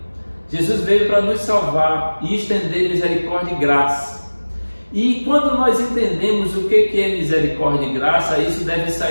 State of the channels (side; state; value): both; inverted; correlation -1.00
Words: Jesus veio para nos salvar e estender misericórdia e graça. E quando nós entendemos o que é misericórdia e graça, isso deve